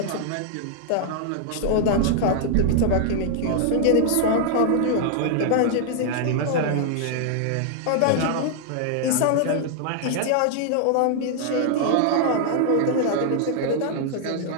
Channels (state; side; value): different; both; correlation 0.00